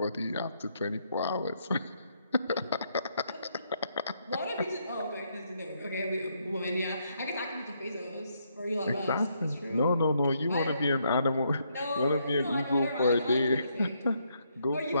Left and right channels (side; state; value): both; inverted; correlation -0.75